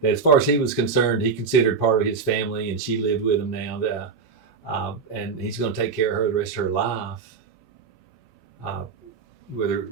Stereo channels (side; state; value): left; quieter; 5.3 dB